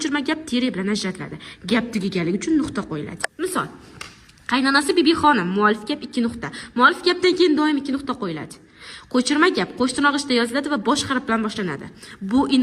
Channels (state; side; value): identical; both; correlation 1.00